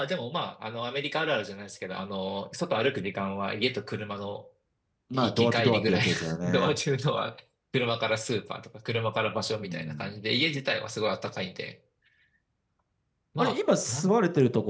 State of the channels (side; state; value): both; identical; correlation 1.00